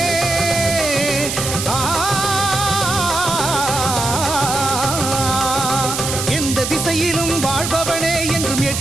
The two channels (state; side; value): noise; right; hiss, 4 dB below the sound